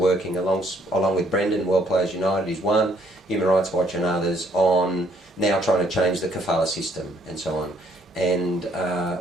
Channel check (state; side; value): normal; both; correlation 0.66